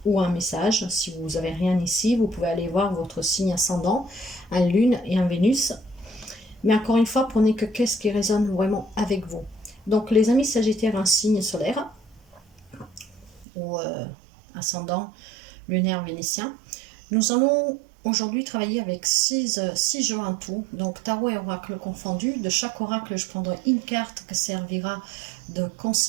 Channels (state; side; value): drops out; left; at 13.5 s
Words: ou un message. Si vous n'avez rien ici, vous pouvez aller voir votre signe ascendant, un Lune et un Vénus. Mais encore une fois, prenez qu'est-ce qui résonne vraiment avec vous. Donc les amis Sagittaires, un signe solaire ou ascendant lunaire vénitien. Nous allons aujourd'hui travailler avec 6 jeux en tout, donc tarot et oracle confondus. De chaque oracle, je prendrai une carte qui servira de